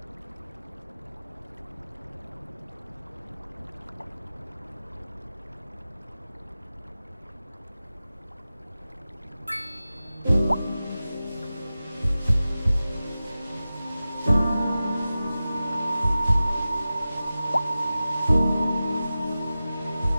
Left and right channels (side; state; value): both; inverted; correlation -0.95